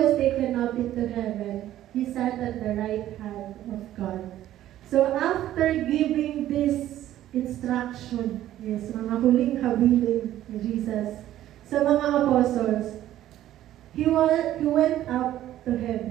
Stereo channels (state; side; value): quieter; left; 13.1 dB